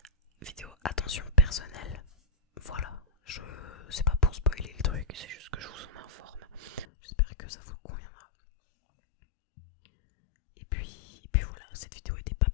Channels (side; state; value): right; drops out; at 6.9 s